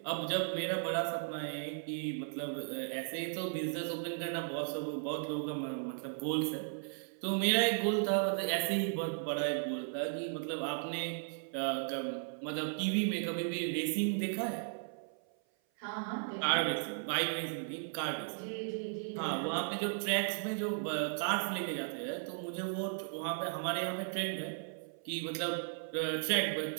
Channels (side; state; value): left; silent; 54 dB below the other